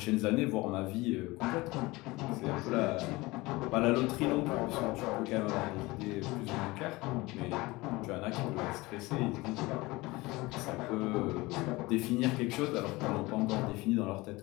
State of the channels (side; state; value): right; quieter; 21.6 dB